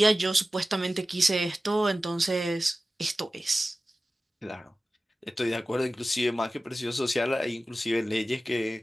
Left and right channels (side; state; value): both; normal; correlation 0.96